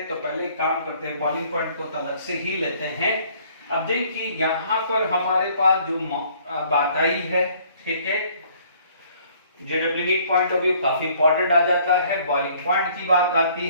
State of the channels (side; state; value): both; inverted; correlation -0.59